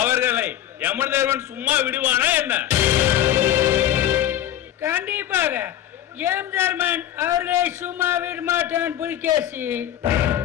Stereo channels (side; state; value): right; quieter; 11.8 dB